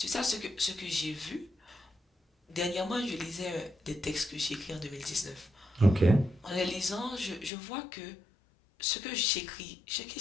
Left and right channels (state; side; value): drops out; right; at 7.5 s